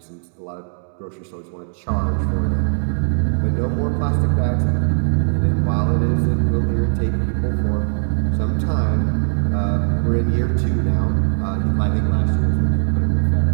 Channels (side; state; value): left; silent; 60 dB below the other